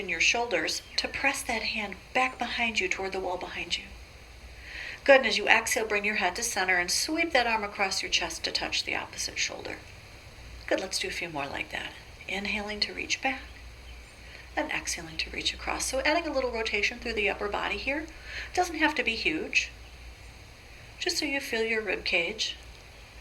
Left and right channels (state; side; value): identical; both; correlation 1.00